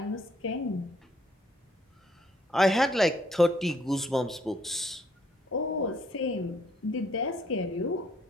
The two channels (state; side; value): normal; both; correlation 0.66